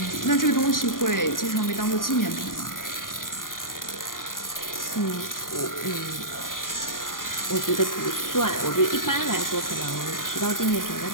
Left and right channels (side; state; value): right; late; 0.90 ms